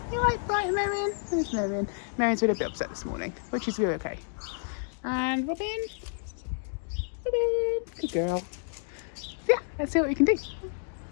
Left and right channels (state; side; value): silent; right; digital silence